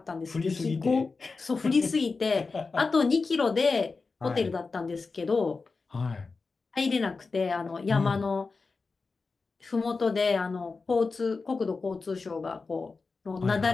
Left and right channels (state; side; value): quieter; right; 4.2 dB